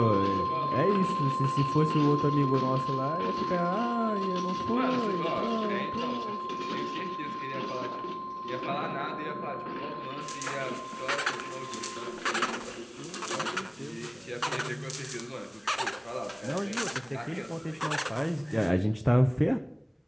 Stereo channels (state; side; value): identical; both; correlation 1.00